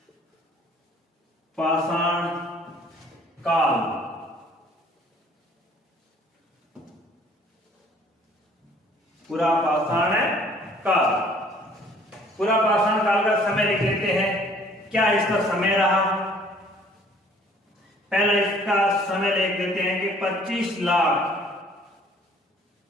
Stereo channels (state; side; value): normal; both; correlation 0.56